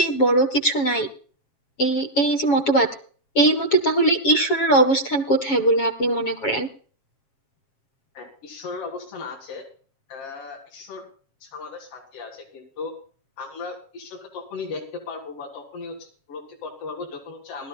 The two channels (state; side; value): late; right; 7.1 ms